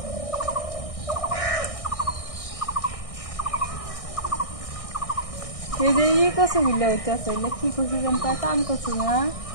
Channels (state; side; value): late; right; 1.6 ms